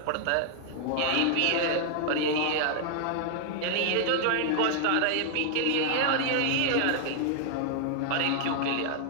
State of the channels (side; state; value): both; different; correlation 0.00